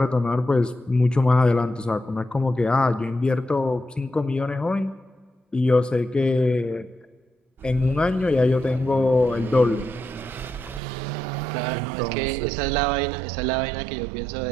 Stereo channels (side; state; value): left; drops out; at 10.8 s